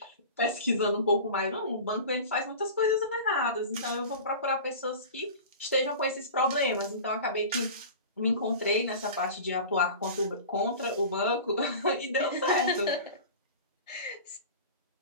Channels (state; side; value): inverted; both; correlation -0.35